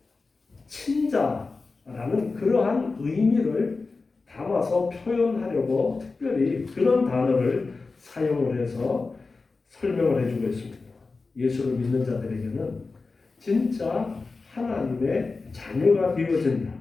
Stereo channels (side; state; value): right; quieter; 4.0 dB